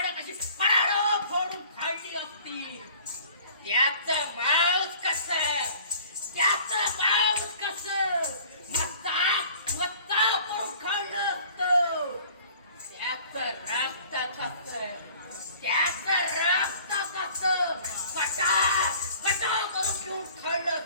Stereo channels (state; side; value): inverted; both; correlation -0.50